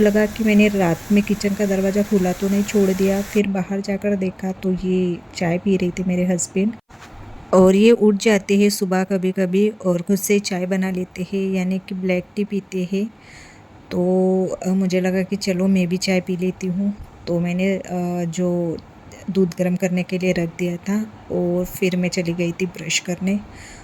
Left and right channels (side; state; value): both; identical; correlation 1.00